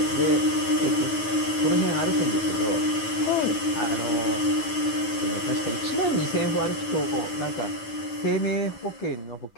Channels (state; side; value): late; right; 9.1 ms